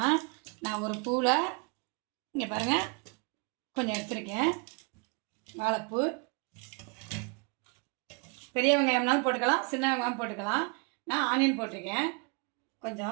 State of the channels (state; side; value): quieter; left; 32.5 dB